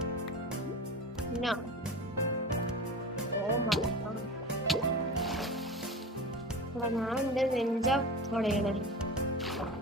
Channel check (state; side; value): normal; both; correlation 0.30